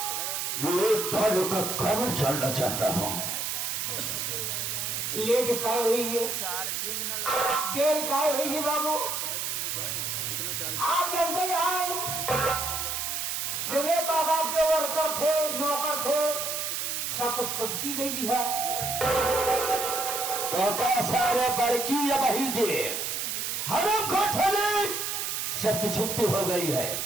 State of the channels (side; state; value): right; noise; hiss, 2 dB below the sound